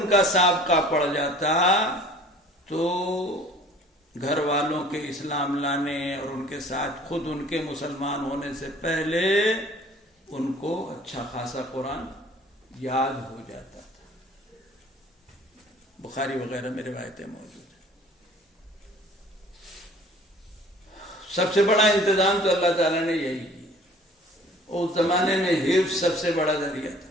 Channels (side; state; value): both; normal; correlation 0.50